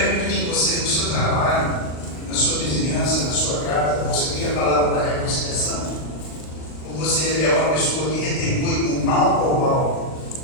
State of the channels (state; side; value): late; right; 39 ms